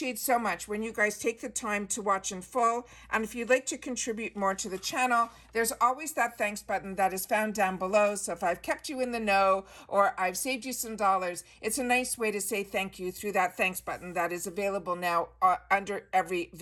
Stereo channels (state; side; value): identical; both; correlation 1.00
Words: so much when you guys take the time to watch in full. And if you'd like to contribute more to the channel, there's always that thanks button that is found down below. So if I've kept you in the know or I've saved you some dollars, it's a nice way to say thank you through that thanks button that is available now under every